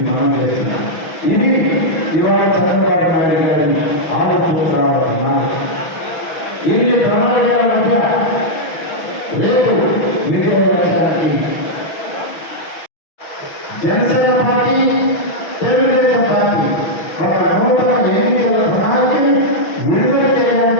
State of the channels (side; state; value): right; late; 6.1 ms